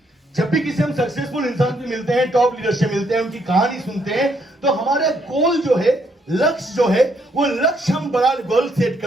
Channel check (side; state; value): both; normal; correlation 0.72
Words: जब भी किसी हम सक्सेसफुल इंसान से मिलते हैं, टॉप लीडर से मिलते हैं, उनकी कहानी सुनते हैं, तो हमारा गोल जो है, लक्ष्य जो है, वो लक्ष्य हम बड़ा गोल सेट